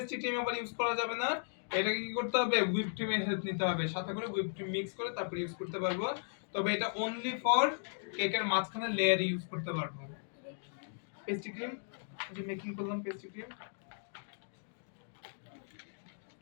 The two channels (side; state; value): right; silent; digital silence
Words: ক্রিম আবার ইউজ করা যাবে না, এটাকে কি করতে হবে, হুইপ ক্রিমের হেল্প নিতে হবে, সাথে করে হুইপ ক্রিম মিক্স করে তারপর ইউজ করতে পারবো। তবে এটা অনলি ফর কেকের মাঝখানে লেয়ার ইউজ করতে পারবো। পেস্ট্রি ক্রিম যে মেকিং করলাম, পেস্ট্রি ক্রিম